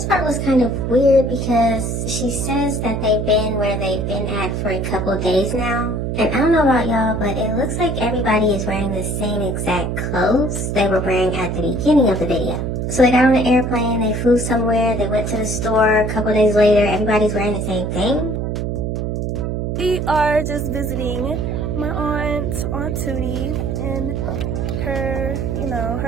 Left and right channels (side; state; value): right; noise; hum, 1 dB below the sound